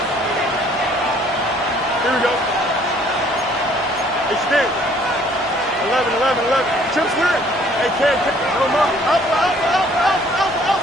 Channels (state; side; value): normal; both; correlation 0.59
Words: Here we go. It's there. 11. Chip clear. Hey, Ken. No more. Up.